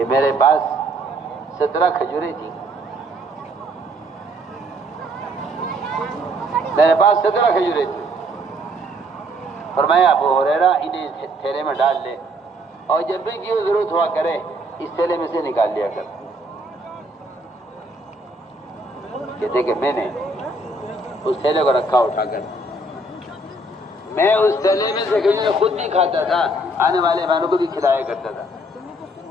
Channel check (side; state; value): both; normal; correlation 0.64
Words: میرے پاس 17 کھجوریں تھیں، فرمایا ابو ہریرہ انہیں تھیلے میں ڈال لے، اور جب بھی کی ضرورت ہوا کرے اس تھیلے میں سے نکال لیا کر۔ کہتے کہ میں نے اس تھیلے کو رکھا اٹھا کر، میں اس تھیلے میں سے کھجوریں خود بھی کھاتا تھا، آنے والے مہمانوں کو بھی کھلایا کرتا تھا۔